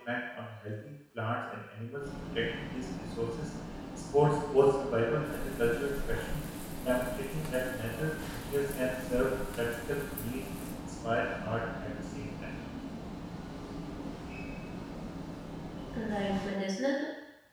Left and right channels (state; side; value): identical; both; correlation 1.00